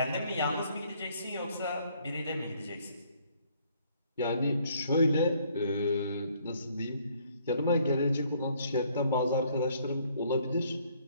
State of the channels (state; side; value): inverted; both; correlation -0.64